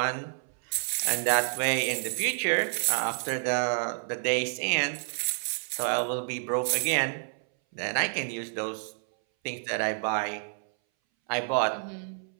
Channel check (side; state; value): left; silent; 59 dB below the other